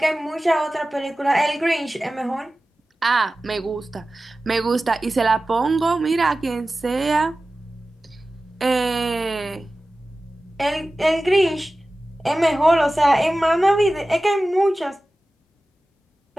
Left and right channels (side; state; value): both; normal; correlation 0.96